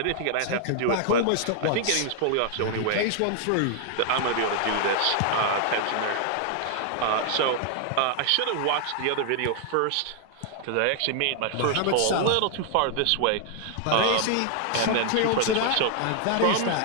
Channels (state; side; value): different; both; correlation 0.00